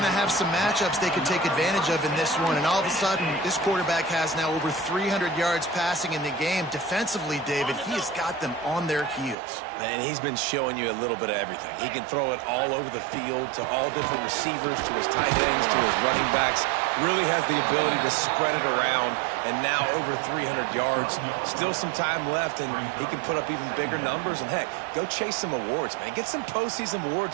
to have some matchups they could take advantage of in this one, and all of a sudden, this quarterback has now over 300 yards passing in the game. Defensively, David, he has got them on their heels. And he's been showing you a little bit of everything. He can throw it all over the field to all different receivers, to his tight ends, to his running backs. Really has the ability to spread it around, and now over 300 yards. Still some time left, and he can put up even bigger numbers. And, heck, go chase some awards, man. Get some postseason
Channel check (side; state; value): left; drops out; at 9.3 s